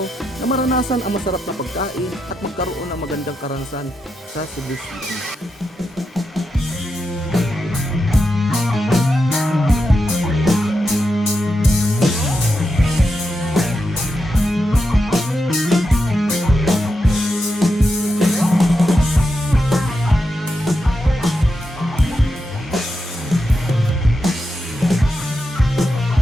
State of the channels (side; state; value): both; normal; correlation 0.86